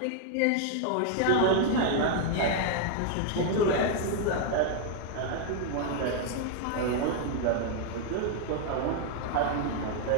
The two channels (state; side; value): different; both; correlation 0.00